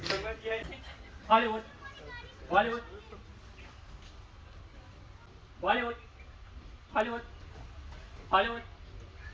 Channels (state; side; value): identical; both; correlation 1.00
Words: Hollywood. Bollywood. Bollywood. Hollywood. Hollywood.